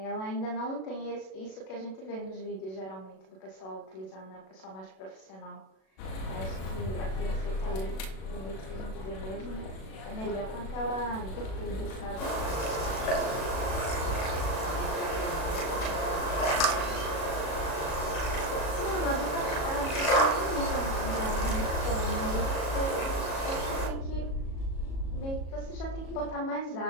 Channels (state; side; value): late; right; 37 ms